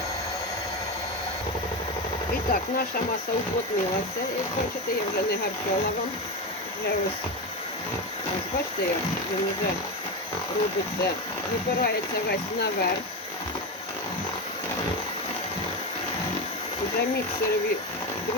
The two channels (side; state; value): both; normal; correlation 0.17